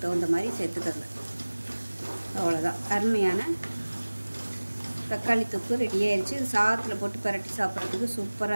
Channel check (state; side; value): inverted; both; correlation -1.00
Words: தகுந்த மாதிரி சேர்த்துக்கங்க. அவ்வளோதான், அருமையான தக்காளி தொக்கு ரெடி ஆயிடுச்சு. இது சாதத்தில் போட்டு பரட்டி சாப்பிட்றதுக்கு